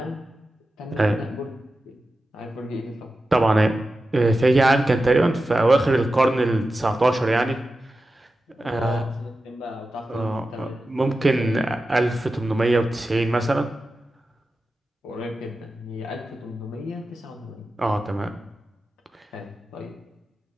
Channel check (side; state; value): both; normal; correlation 0.92